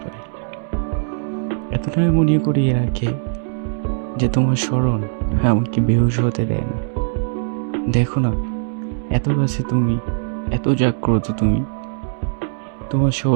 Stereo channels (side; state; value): left; silent; digital silence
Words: পারি। এতটাই মনে করিয়ে রাখে যে তোমার স্মরণ আমাকে বেহুশ হতে দেয় না। দেখো না, এত কাছে তুমি, এত জাগ্রত তুমি, তোমার